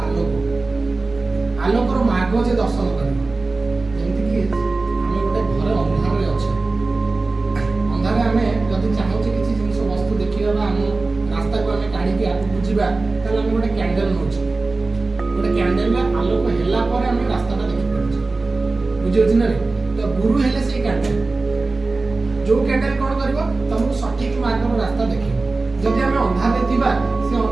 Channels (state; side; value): quieter; left; 3.5 dB